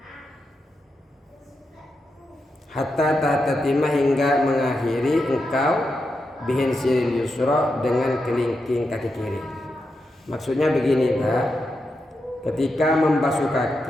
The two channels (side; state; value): both; normal; correlation 0.86